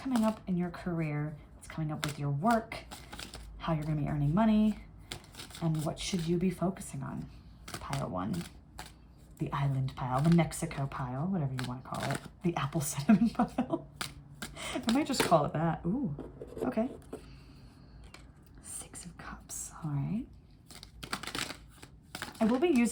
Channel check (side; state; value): both; identical; correlation 1.00